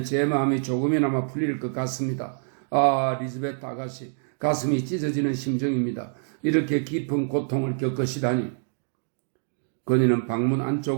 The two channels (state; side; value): silent; left; 60 dB below the other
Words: 제 마음이 조금이나마 풀릴 것 같습니다. 아, 리즈베트 아가씨, 가슴이 찢어지는 심정입니다. 이렇게 깊은 고통을 겪으시다니. 그녀는 방문